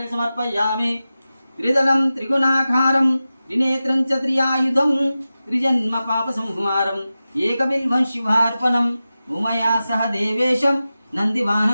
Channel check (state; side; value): inverted; both; correlation -0.94